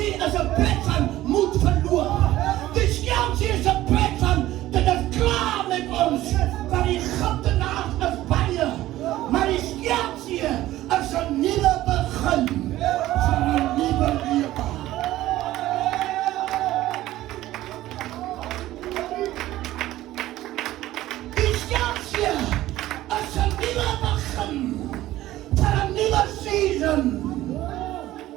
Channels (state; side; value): quieter; left; 15.3 dB